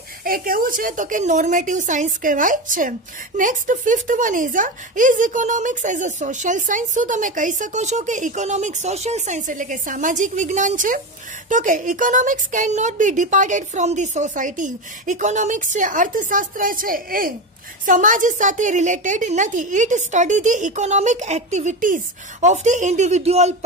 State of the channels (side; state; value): both; normal; correlation 0.19